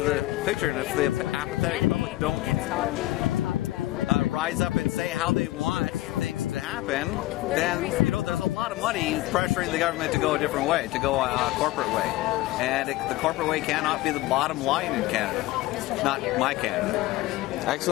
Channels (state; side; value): quieter; right; 17.3 dB